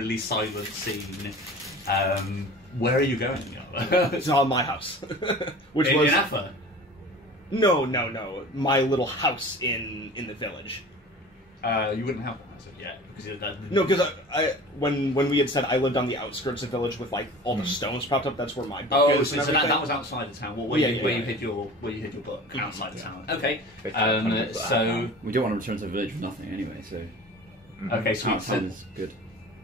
silent scene. Where are you going? It's on my house, which in was Affa. No, my little house in the village. You wouldn't have one as of yet because No, because when we had said I lived on the outskirts of the village with like all the stones propped up, that's where my book is. So that was outside the town. Where you hid your book outside the town. Okay. So we don't want to return to the village with nothing anyway. So okay, sweet. Sounds good.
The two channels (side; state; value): both; normal; correlation 0.40